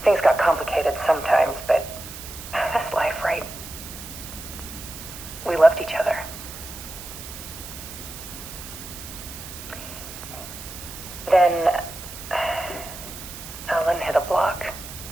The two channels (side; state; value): right; noise; hiss, 12 dB below the sound